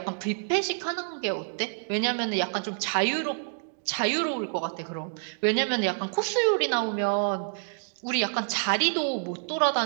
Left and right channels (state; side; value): silent; left; digital silence